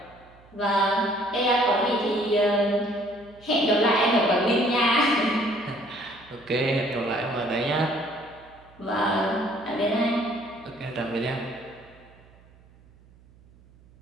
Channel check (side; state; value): right; noise; hum, 27 dB below the sound